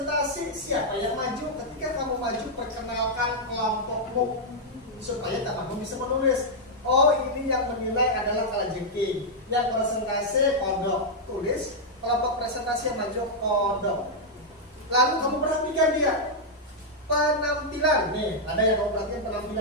siapa yang maju. Ketika kamu maju, perkenalkan kelompokmu supaya kamu bisa menulis. Oh, ini yang menilai adalah Kalajengking, yang presentasi Kodok. Tulis kelompok presentasi yang maju Kodok. Lalu kamu perhatikan dia penampilan. Nih, ada yang kamu perhatikan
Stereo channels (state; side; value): normal; both; correlation -0.04